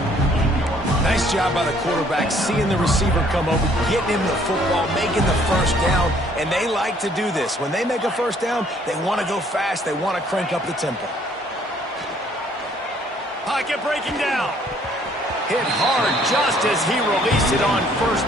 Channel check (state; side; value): normal; both; correlation 0.62